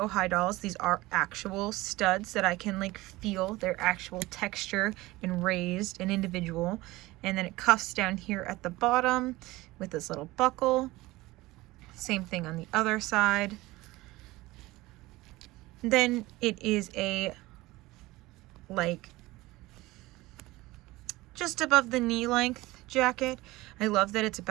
High dolls, these are actual studs that I can like feel their actual texture and raised and individual. And then it cuffs down here at the bottom with this little buckle. Same thing on the other side. Then it is a like just above the knee length jacket. I love that it's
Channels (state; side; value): quieter; left; 19.6 dB